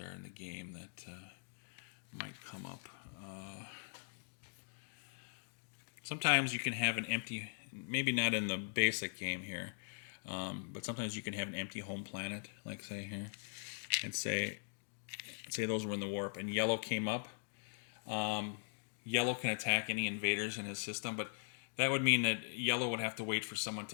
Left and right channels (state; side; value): silent; right; digital silence